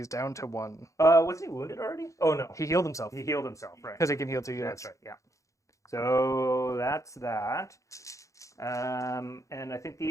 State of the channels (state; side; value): late; right; 0.15 ms